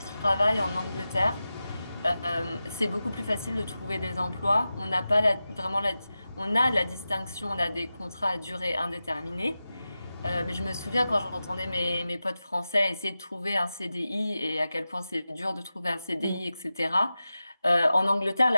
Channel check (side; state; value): both; inverted; correlation -0.93